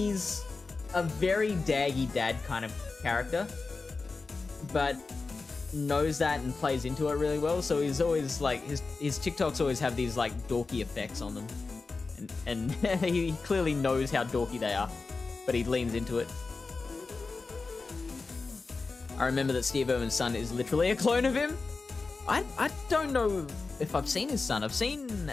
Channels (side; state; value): right; quieter; 4.0 dB